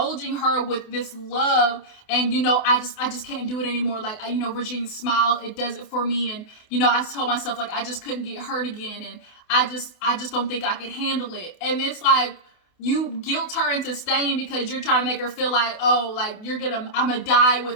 her with this love. And, I just can't do it anymore. Like, Virginia's smile, it does it for me. And, I told myself like, I just couldn't get hurt again. And I just don't think I could handle it. And it's like, you guilt her into staying because you're trying to make her feel like, oh, like I'm gonna die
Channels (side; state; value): right; late; 28 ms